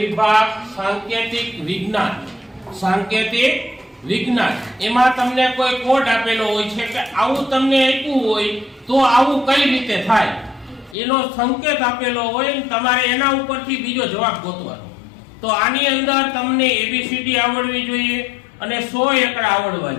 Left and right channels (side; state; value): right; drops out; at 11.0 s